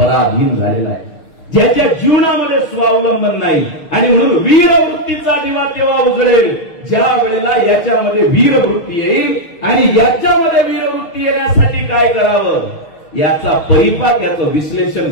झालेला आहे, ज्याच्या जीवनामध्ये स्वावलंबन नाही. आणि म्हणून वीरवृत्तीचा दिवा तेव्हा उजळेल ज्या वेळेला याच्यामध्ये वीरवृत्ती येईल. आणि याच्यामध्ये वीरवृत्ती येण्यासाठी काय करावं याचा परिपाक, याचं विश्लेषण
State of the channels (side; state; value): right; late; 6.4 ms